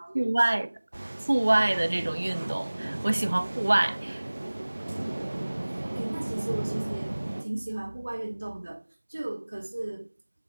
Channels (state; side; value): inverted; both; correlation -1.00